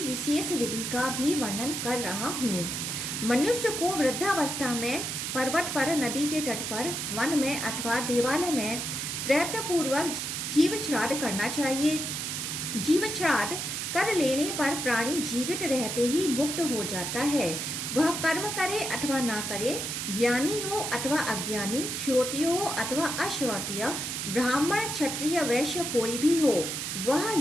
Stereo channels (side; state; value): right; noise; hiss, 3 dB below the sound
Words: विशेष विधि का भी वर्णन कर रहा हूँ। मनुष्य को वृद्धावस्था में पर्वत पर, नदी के तट पर, वन में अथवा देवालय में प्रयत्नपूर्वक जीवित श्राद्ध करना चाहिए। जीवित श्राद्ध कर लेने पर प्राणी जीवित रहते ही मुक्त हो जाता है। वह कर्म करे अथवा ना करे, ज्ञानी हो अथवा अज्ञानी, श्रोतीय हो अथवा अश्रोतीय, ब्राह्मण, क्षत्रिय, वैश्य कोई भी हो, वह